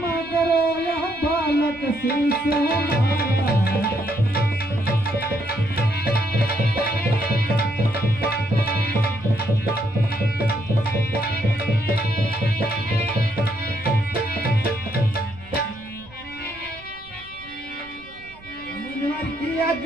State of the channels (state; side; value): noise; right; rumble, 23 dB below the sound